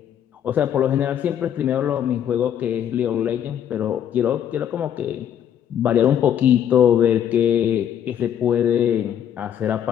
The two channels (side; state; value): right; quieter; 9.6 dB